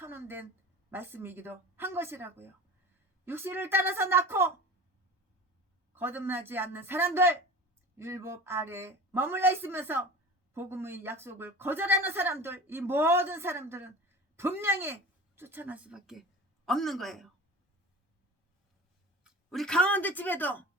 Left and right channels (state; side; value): normal; both; correlation 0.36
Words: 말씀이기도 한 것이라고요. 육신을 따라서 낳고 거듭나지 않는 사람들, 율법 아래 머물러 있으면서 복음의 약속을 거절하는 사람들, 이 모든 사람들은 분명히 쫓아날 수밖에 없는 거예요. 우리 강원도 집에도